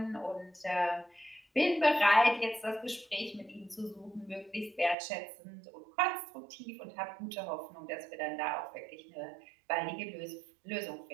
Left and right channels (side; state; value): left; drops out; at 5.0 s